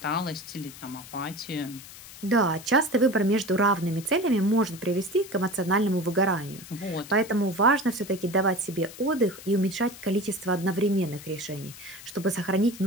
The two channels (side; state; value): left; noise; hiss, 16 dB below the sound